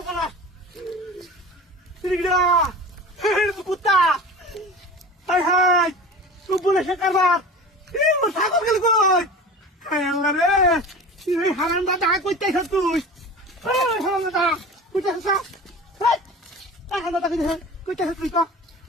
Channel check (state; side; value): normal; both; correlation 0.35